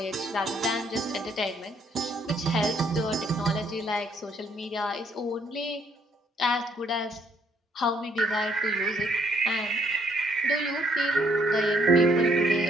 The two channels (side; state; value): both; normal; correlation 0.67